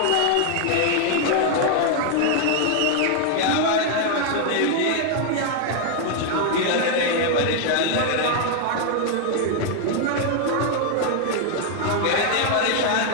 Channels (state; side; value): different; both; correlation 0.00